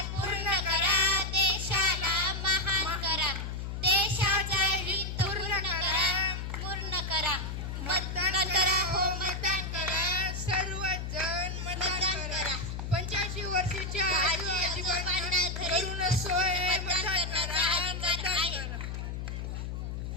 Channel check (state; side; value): noise; left; hum, 5 dB below the sound